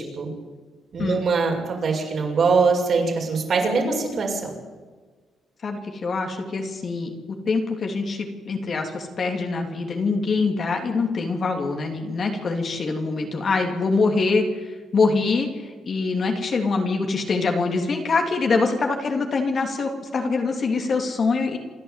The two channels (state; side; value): normal; both; correlation 0.82